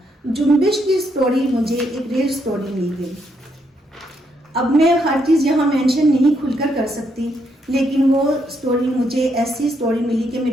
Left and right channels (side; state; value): both; normal; correlation 0.76